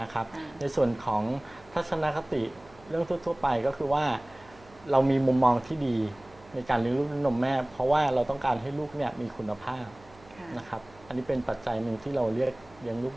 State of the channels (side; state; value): right; noise; hum, 25 dB below the sound